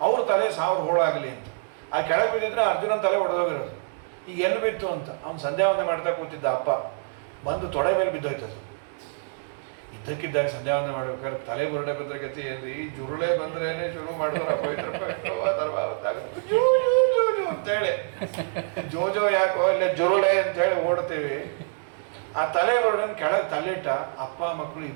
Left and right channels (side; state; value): left; silent; digital silence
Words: ಅವ್ರ ತಲೆ 1000 ಹೋಳಾಗಲಿ ಅಂತ. ಆ ಕೆಳಗೆ ಬಿದ್ದಿದ್ರೆ ಅರ್ಜುನನ ತಲೆ ಒಡೆದೋಗಿರೋದು. ಈಗ ಎಲ್ಲಿ ಬಿತ್ತು ಅಂತ ಅವ್ನು ಸಂಧ್ಯಾವಂದನೆ ಮಾಡ್ತಾ ಕೂತಿದ್ದ. ಅಪ್ಪ ಬಂದು ತೊಡೆ ಮೇಲೆ ಬಿದ್ದೋಯ್ತದ್ದು. ಇದ್ದಕ್ಕಿದ್ದಾಗ ಸಂಧ್ಯಾವಂದನೆ ಮಾಡ್ಬೇಕಾದ್ರೆ ತಲೆ ಬುರುಡೆ ಬಂದ್ರೆ ಗತಿ ಏನ್ರಿ, ಜುರುಳೆ ಬಂದ್ರೇನೆ ಶುರು ಮಾಡಿದ್ರು ಅಂತೇಳಿ, ಜೋಜೋ ಯಾಕೋ ಇಲ್ಲೇ ಜುರುಳೆ ಅಂತೇಳಿ ಓಡ್ತೀವಿ. ಆ ತಲೆ ಬುರುಡನ್ ಕೆಳಗೆ ತಲೆಯಿಟ್ಟ. ಅಪ್ಪ ಮಕ್ಕಳು